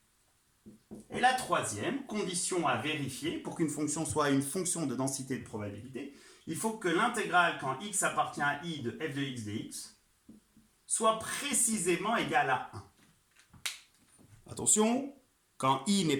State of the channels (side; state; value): both; identical; correlation 1.00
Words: et la troisième condition à vérifier pour qu'une fonction soit une fonction de densité de probabilité, il faut que l'intégrale quand x appartient à i de f de x dx soit précisément égale à 1. Attention, quand i n'est